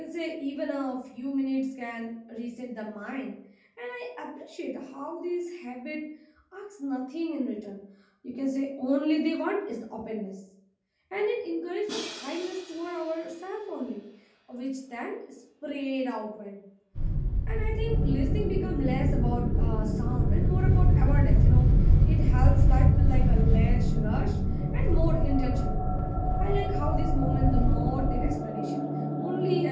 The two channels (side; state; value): both; identical; correlation 1.00